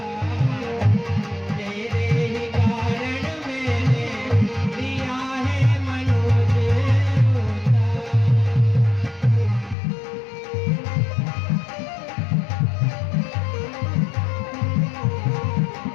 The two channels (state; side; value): drops out; right; at 9.8 s